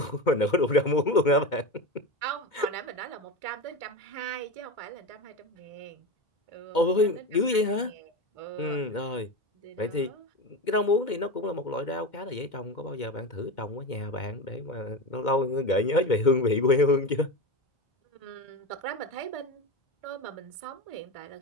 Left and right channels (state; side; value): late; right; 2.2 ms